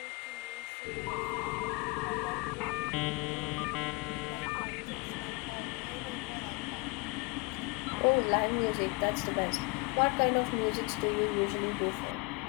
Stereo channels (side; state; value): right; quieter; 25.4 dB